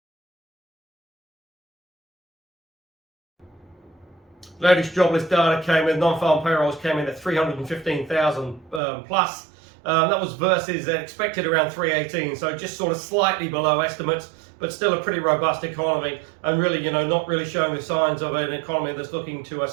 Latest jobless data came in, non-farm payrolls came in at 315,000 plus. That was versus expected around 318, so just sort of slightly below estimates, but still a pretty robust economy, and really, not really showing the signs of an economy that's looking to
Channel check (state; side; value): drops out; left; at 8.8 s